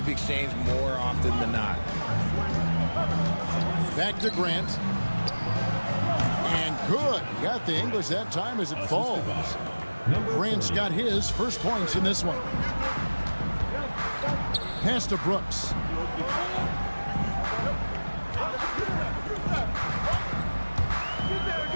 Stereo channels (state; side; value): inverted; both; correlation -1.00